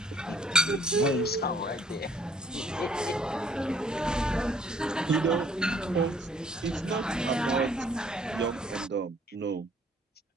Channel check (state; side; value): normal; both; correlation 0.60